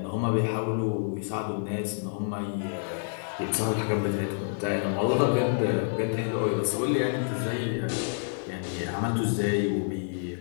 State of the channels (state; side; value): silent; right; digital silence